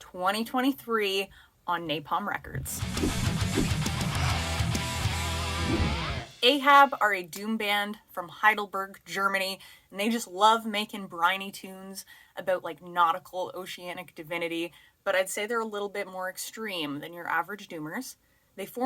on Napalm Records. AHAB are a doom band from Heidelberg, Germany, and they just love making briny tunes about like nautical oceanic divinity, but I'd say they're a little bit more extreme than your average doomers. They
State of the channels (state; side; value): identical; both; correlation 1.00